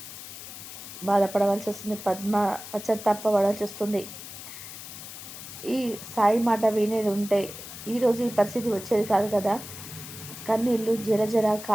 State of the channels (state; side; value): noise; left; hiss, 12 dB below the sound